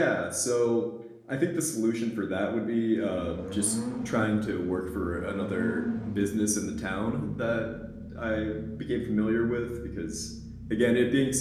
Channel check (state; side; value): identical; both; correlation 1.00